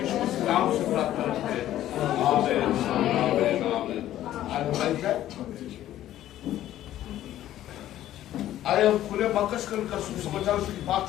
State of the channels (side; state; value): right; quieter; 13.0 dB